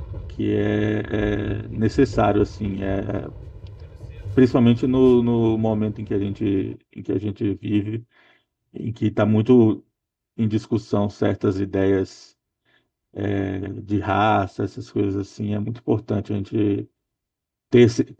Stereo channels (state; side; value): identical; both; correlation 1.00